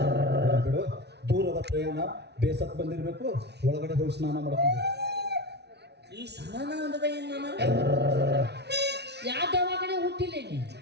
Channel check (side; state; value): left; late; 0.49 ms